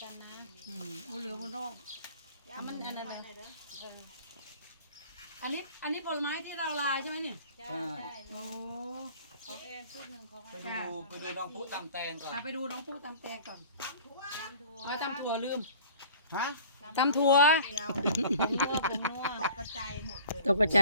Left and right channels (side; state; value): both; inverted; correlation -0.48